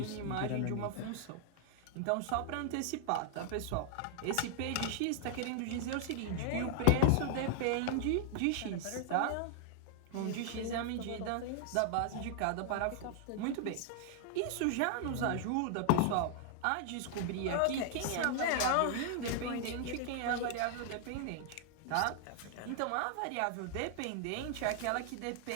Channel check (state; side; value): different; both; correlation 0.00